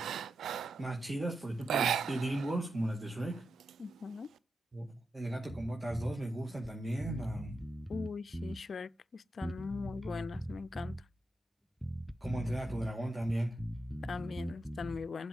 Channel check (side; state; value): both; normal; correlation 0.87